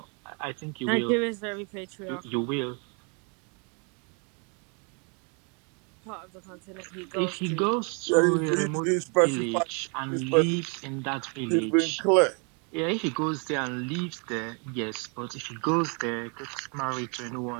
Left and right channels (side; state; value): left; quieter; 35.8 dB